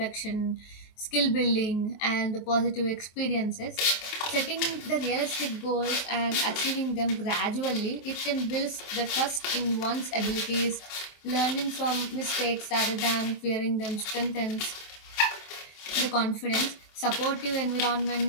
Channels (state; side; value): late; right; 24 ms